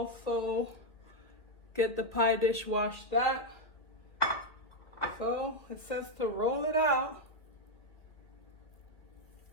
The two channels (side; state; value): right; late; 2.2 ms